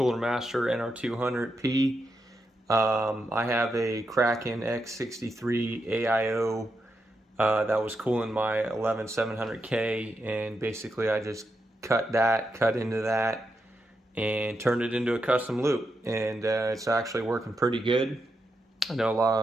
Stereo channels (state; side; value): normal; both; correlation 0.85